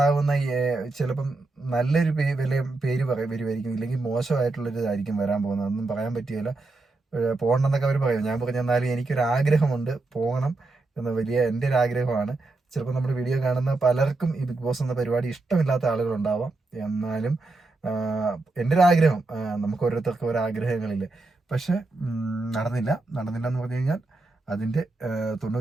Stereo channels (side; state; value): left; quieter; 3.2 dB